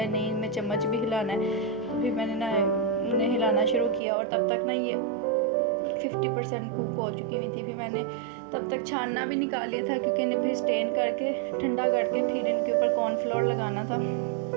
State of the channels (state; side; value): drops out; left; at 4.0 s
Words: नहीं इनमें चम्मच भी हिलाना है, तो फिर मैंने ना उन्हें हिलाना शुरू किया। और तब तक ना ये 50% कुक हो चुकी हुई थी। फिर मैंने तब तक छानना भी निकाल लिया था, क्योंकि इन्हें फिर स्टेन करके ठंडा करके फिर इनके ऊपर कॉर्नफ्लोर लगाना था।